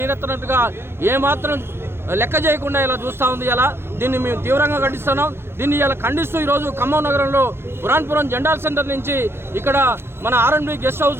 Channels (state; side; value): late; left; 0.12 ms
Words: ఏమాత్రం లెక్క చేయకుండా ఇలా చూస్తూ ఉంది. ఇలా దీన్ని మేము తీవ్రంగా ఖండిస్తున్నాం. దీన్ని ఇలా ఖండిస్తూ ఈరోజు ఖమ్మం నగరంలో పురాణపురం జెండాల్ సెంటర్ నుంచి ఇక్కడ మన R&B గెస్ట్